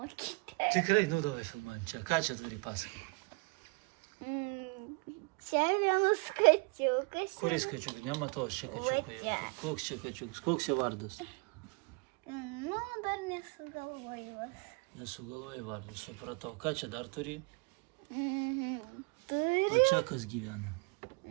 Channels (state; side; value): quieter; left; 29.9 dB